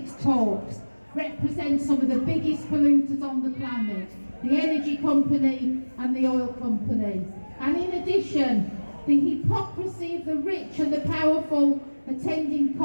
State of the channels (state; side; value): inverted; both; correlation -1.00